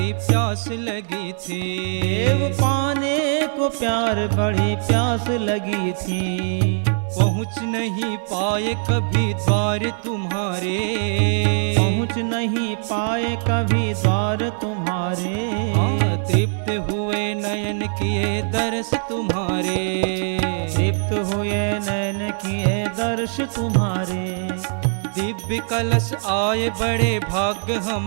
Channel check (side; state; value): left; silent; 64 dB below the other